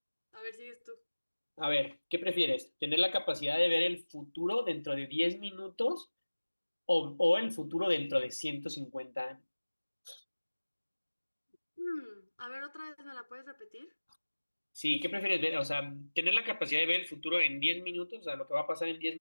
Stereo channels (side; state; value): both; inverted; correlation -1.00